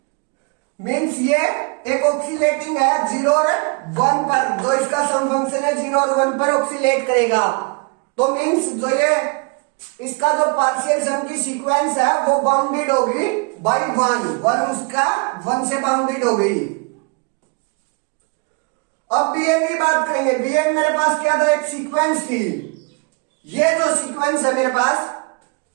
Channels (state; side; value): quieter; left; 31.3 dB